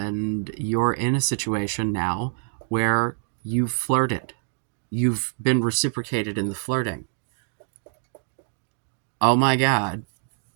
you're in a situation now where you've flirted, you've been reciprocated in the flirting. Oh my God,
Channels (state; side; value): silent; left; digital silence